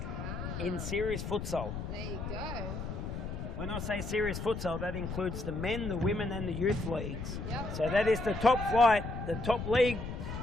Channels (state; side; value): noise; left; rumble, 6 dB below the sound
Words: in series futsal. There you go. When I say series futsal, that includes the men, the women and the youth leagues. Yep. So that is the top flight, the top league,